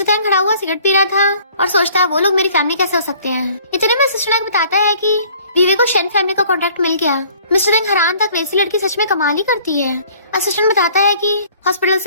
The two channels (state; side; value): inverted; both; correlation -0.55